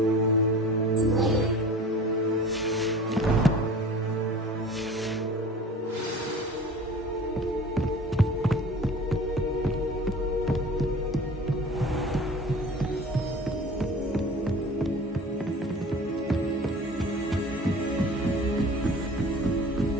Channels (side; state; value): both; normal; correlation 0.41